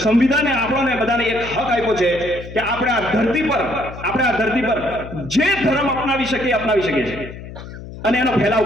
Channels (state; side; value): noise; left; hum, 13 dB below the sound